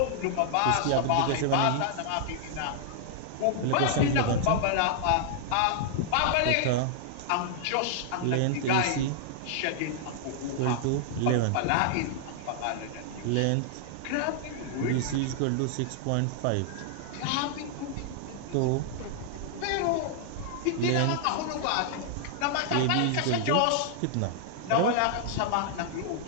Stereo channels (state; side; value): different; both; correlation -0.01